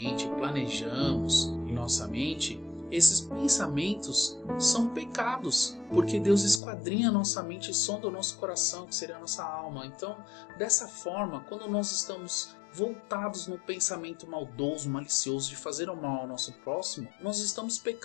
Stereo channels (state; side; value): drops out; right; at 6.6 s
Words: planejamos em nossa mente, esses pensamentos são pecados, porque Deus esquadrinha a nossa mente e sonda o nosso coração, que seria a nossa alma. Então, dessa forma, quando nós estamos voltados no pensamento maldoso, malicioso de fazer o mal ao nosso próximo, nós estamos